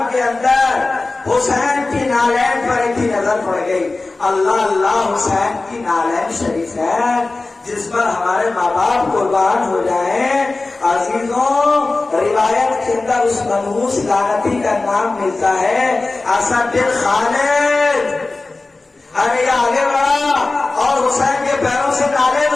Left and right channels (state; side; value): quieter; right; 3.4 dB